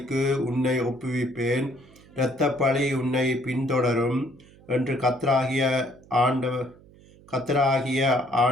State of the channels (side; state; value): right; noise; hum, 25 dB below the sound